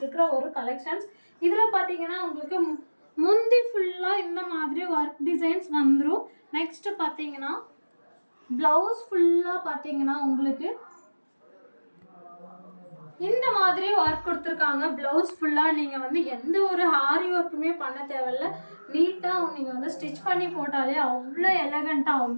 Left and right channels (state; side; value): inverted; both; correlation -1.00